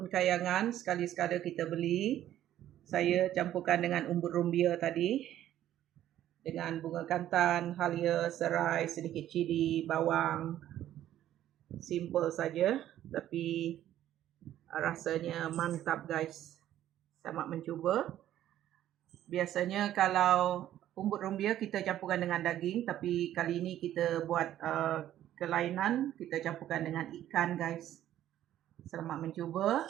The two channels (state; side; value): quieter; left; 12.3 dB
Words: kayangan, sekali-sekala kita beli. Saya campurkan dengan umbut rumbia tadi, dengan bunga kantan, halia, serai, sedikit cili, bawang. Simple saja, tapi rasanya mantap guys. Selamat mencuba. Biasanya kalau umbut rumbia kita campurkan dengan daging, tapi kali ini kita buat kelainan, kita campurkan dengan ikan guys. Selamat mencuba.